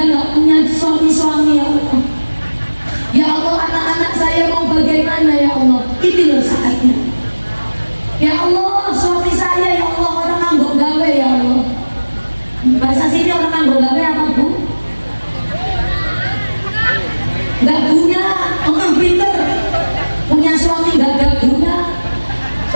gak punya suami-suami, ya Allah. Ya Allah, anak-anak saya mau bagaimana, ya Allah. Ini loh saatnya. Ya Allah, suami saya, ya Allah, orang nganggo gawe, ya Allah. Bahasa sini orang nganggo gawe apa Bu? Gak guna, orang pinter. Punya suami gak guna.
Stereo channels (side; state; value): both; inverted; correlation -1.00